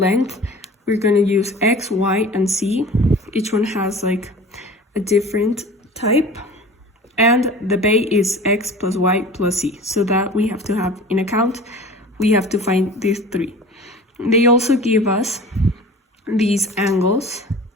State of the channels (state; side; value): normal; both; correlation 0.40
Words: We're going to use X, Y, and Z. Each one has like a different type. And the bay is X plus Y plus Z. So that we have to have in account. We have to find these 3. They also give us these angles.